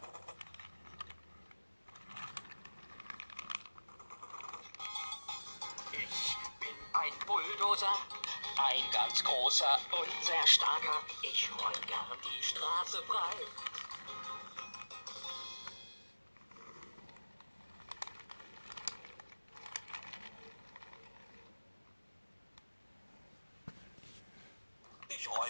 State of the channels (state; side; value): inverted; both; correlation -1.00